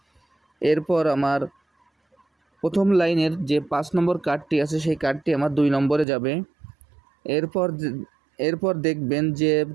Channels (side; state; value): left; drops out; at 6.1 s